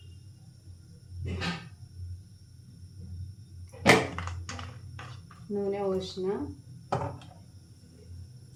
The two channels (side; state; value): both; identical; correlation 1.00